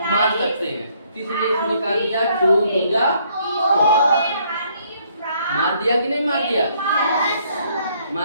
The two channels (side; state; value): both; inverted; correlation -0.67